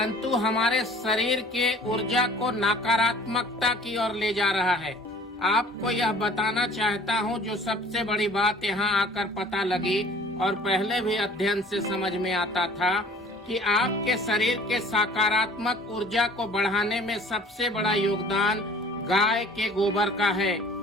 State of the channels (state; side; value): normal; both; correlation 0.50